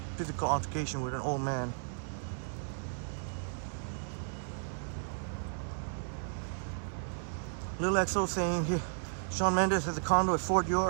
physical altercation with an old man. Lil XO saying here, Shawn Mendes has a condo at Fort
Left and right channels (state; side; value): silent; left; 55 dB below the other